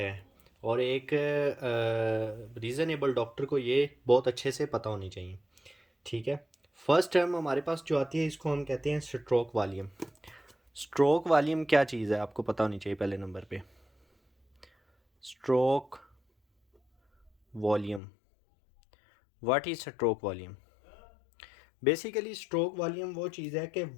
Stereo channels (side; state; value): right; drops out; at 18.0 s